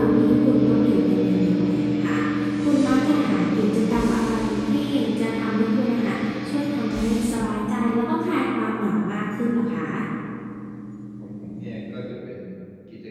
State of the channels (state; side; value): identical; both; correlation 1.00